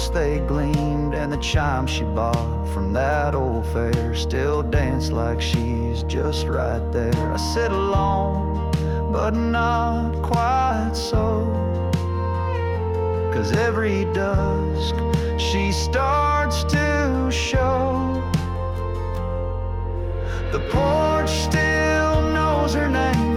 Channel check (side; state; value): both; identical; correlation 1.00